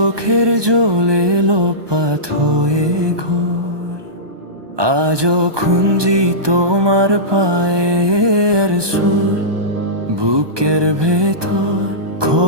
জলে লোপাত হয়ে ঘোর। আজও খুঁজি তোমার পায়ের সুর বুকের ভেতর।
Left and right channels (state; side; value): late; left; 1.2 ms